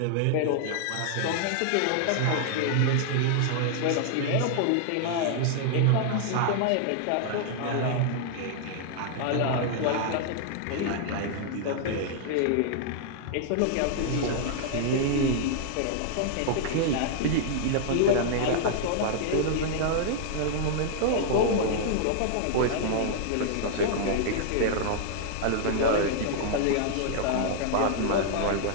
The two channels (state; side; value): different; both; correlation -0.01